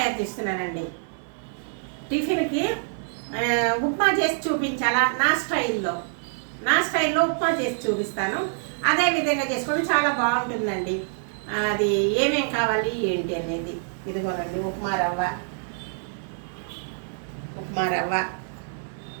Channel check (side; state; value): left; silent; 59 dB below the other